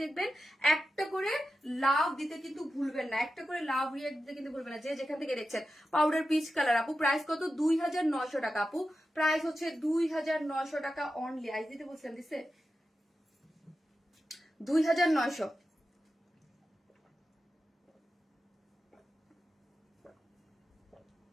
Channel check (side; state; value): both; normal; correlation 0.91